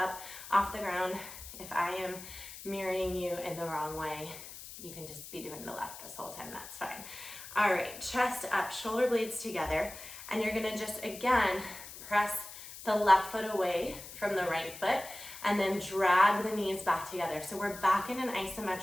off the ground. If I am mirroring you in the wrong way, you can just be doing the left this whole time, that's fine. All right, chest up, shoulder blades together, and you're gonna just, again, press the left foot away from the right foot, and then drag the knees back together. So we're back in an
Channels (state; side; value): noise; left; hiss, 13 dB below the sound